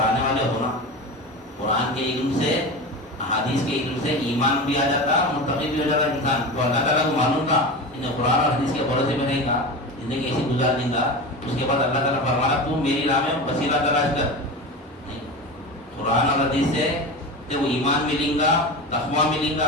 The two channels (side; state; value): both; normal; correlation 0.27